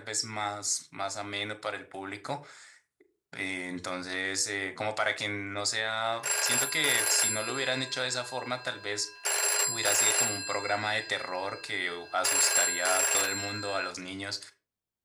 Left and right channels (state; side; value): identical; both; correlation 1.00